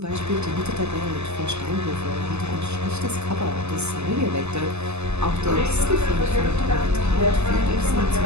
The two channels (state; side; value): late; left; 0.81 ms